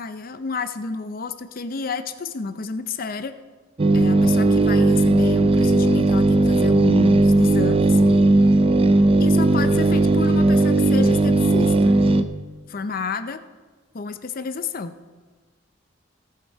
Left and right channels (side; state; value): both; normal; correlation 0.82